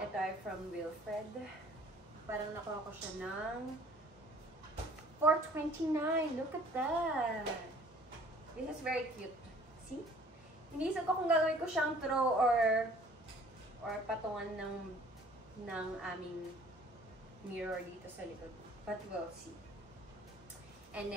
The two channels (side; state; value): both; normal; correlation 0.54